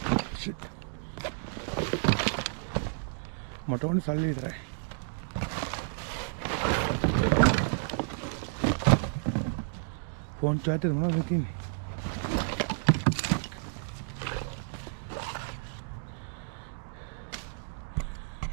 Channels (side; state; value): left; silent; digital silence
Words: මට ඕනේ සල්ලි විතරයි. ෆෝන් චාර්ජර් මොනවද තියෙන්නේ?